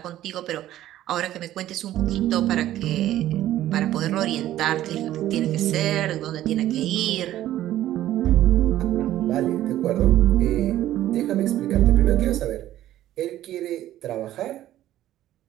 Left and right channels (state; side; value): quieter; left; 13.4 dB